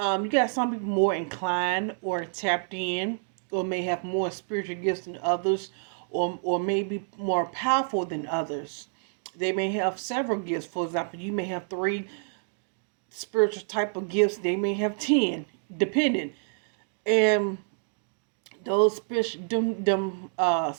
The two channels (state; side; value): silent; left; digital silence